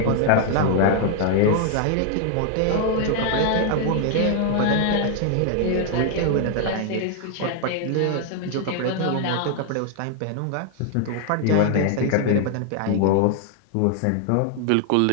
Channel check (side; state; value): both; different; correlation 0.00